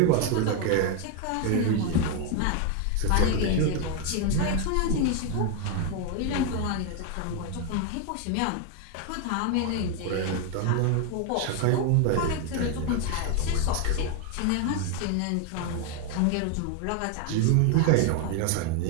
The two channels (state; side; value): different; both; correlation 0.01